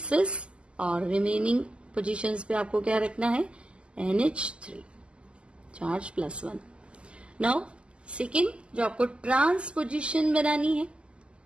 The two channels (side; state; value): left; late; 0.052 ms